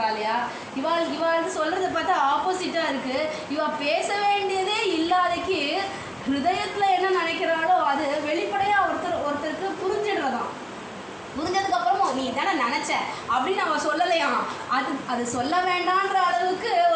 இல்லையா. இவாள் சொல்கிறத பார்த்தா ஆப்போசிட்டாக இருக்குது. இவள் பேச வேண்டியதே இல்லாதக்கு ஹிருதயத்தில் என்ன நினைக்கிறாளோ அது வெளிப்படையாக ஒருத்தருக்கு புரிஞ்சிடுறதான். புரிஞ்சதுக்கப்புறமும் நீ தானே நினச்ச அப்படின்னு அவன் சொல்லலையாம். அது சொல்ல வேண்டான்ற அளவுக்கு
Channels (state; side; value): identical; both; correlation 1.00